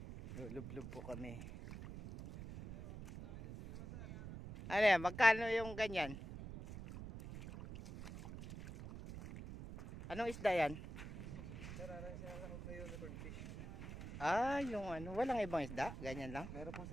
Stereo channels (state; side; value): noise; right; rumble, 10 dB below the sound